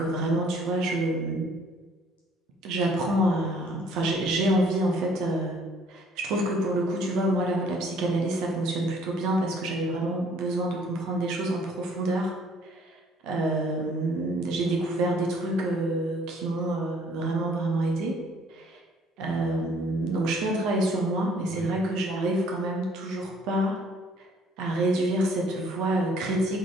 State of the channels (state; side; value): normal; both; correlation 0.59